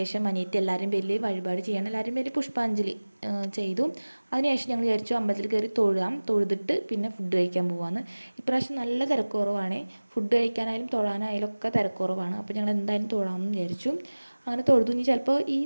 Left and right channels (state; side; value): inverted; both; correlation -1.00